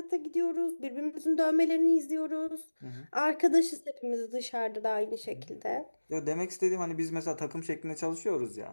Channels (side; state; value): both; inverted; correlation -1.00